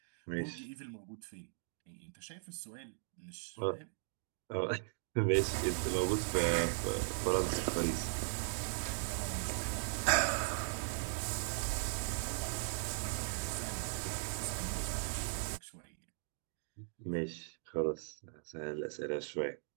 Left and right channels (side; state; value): left; silent; digital silence